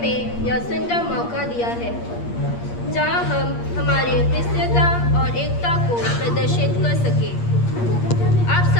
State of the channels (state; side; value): late; right; 8.5 ms